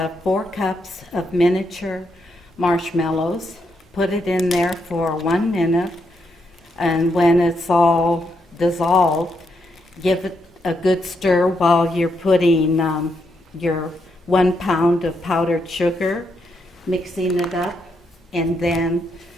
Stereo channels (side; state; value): both; normal; correlation 0.79